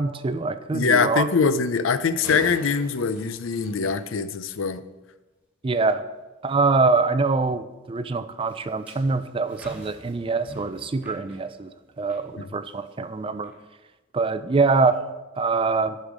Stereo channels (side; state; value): both; normal; correlation 0.20